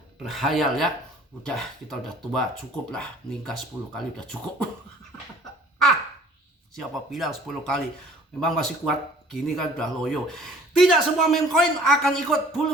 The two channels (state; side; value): normal; both; correlation 0.52